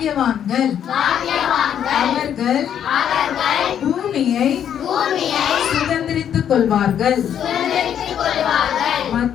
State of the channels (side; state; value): right; quieter; 9.3 dB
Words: அவர்கள் பூமியை சுதந்திரித்துக் கொள்வார்கள்